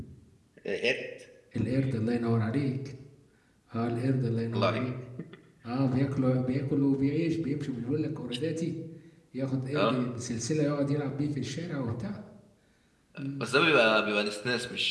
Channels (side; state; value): both; identical; correlation 1.00